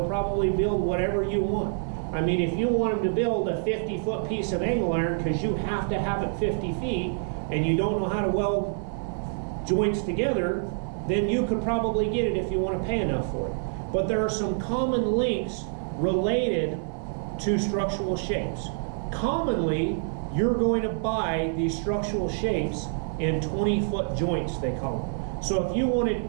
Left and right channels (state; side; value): silent; left; 60 dB below the other